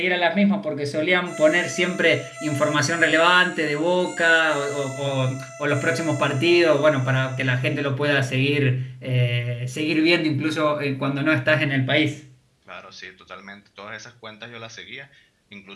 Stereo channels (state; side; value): identical; both; correlation 1.00